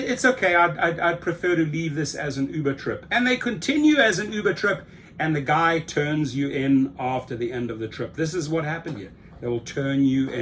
okay. I'd prefer to leave this as an Uber trip. And they continue as an Uber trip, and the guy turns you in after the end of the trip. This is what happened here. They will turn you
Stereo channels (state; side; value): identical; both; correlation 1.00